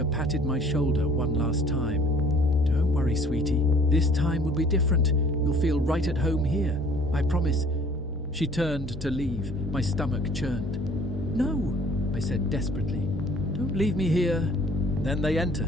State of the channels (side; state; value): both; normal; correlation 0.54